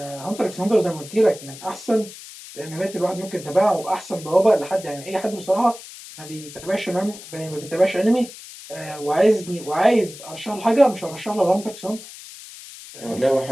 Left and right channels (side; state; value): left; noise; hiss, 15 dB below the sound